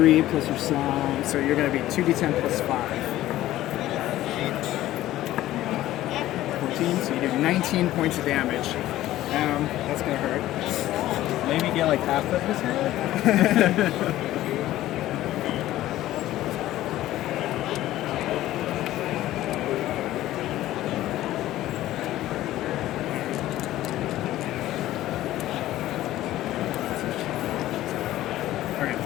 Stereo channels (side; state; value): right; quieter; 14.7 dB